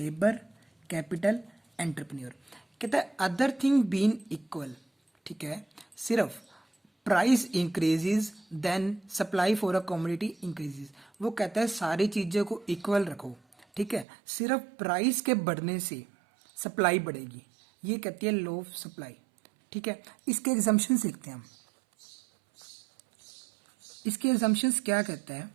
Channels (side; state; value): left; drops out; at 14.1 s